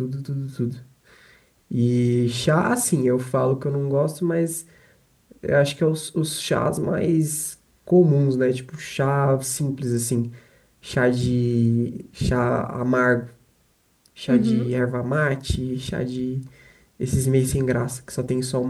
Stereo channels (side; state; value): both; identical; correlation 1.00